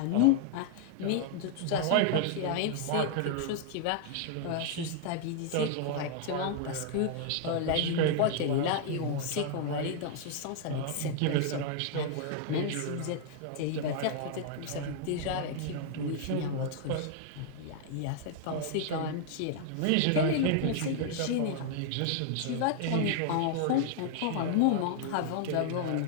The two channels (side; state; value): both; different; correlation 0.00